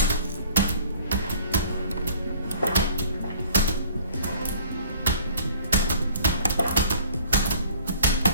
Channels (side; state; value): both; inverted; correlation -0.52